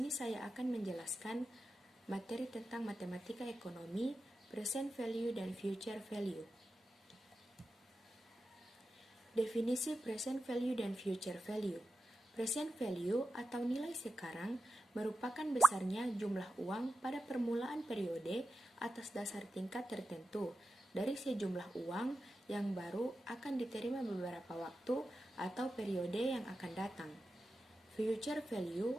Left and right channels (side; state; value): both; normal; correlation 0.91